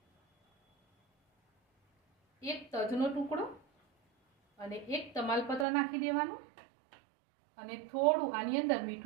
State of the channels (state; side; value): drops out; left; at 5.7 s